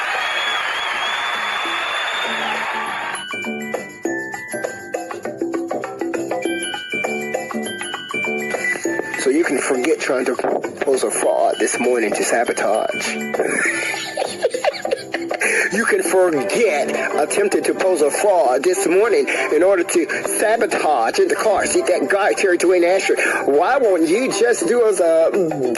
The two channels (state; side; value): identical; both; correlation 1.00